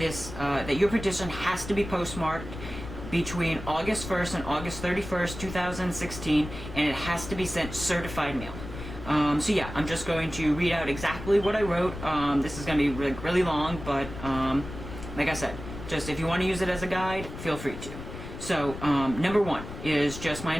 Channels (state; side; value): noise; left; rumble, 10 dB below the sound